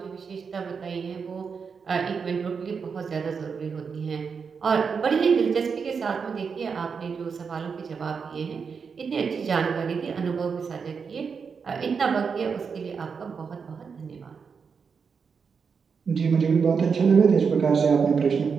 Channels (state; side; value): quieter; left; 5.8 dB